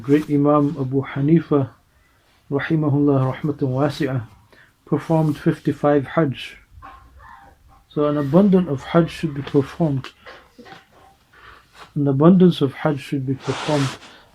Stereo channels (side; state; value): both; identical; correlation 1.00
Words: great Imam Abu Hanifa, rahimahullah rahmatan wasi'ah, performed 55 Hajj. So an abundance of Hajj should be performed. An abundance of Hajj should be performed.